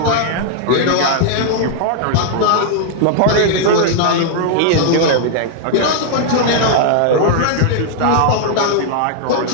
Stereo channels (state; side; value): different; both; correlation -0.01